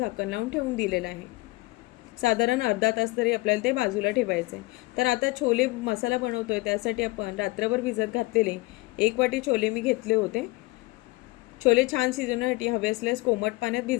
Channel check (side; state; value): right; quieter; 22.6 dB